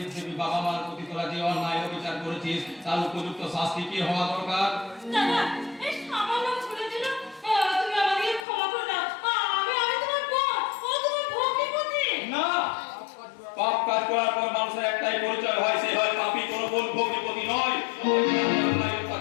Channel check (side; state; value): right; drops out; at 8.5 s